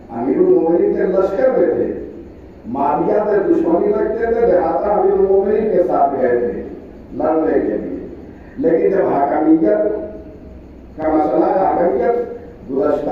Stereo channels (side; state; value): both; identical; correlation 1.00